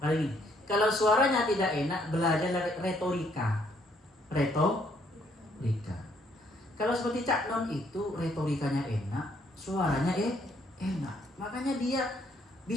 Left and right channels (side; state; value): both; normal; correlation 0.68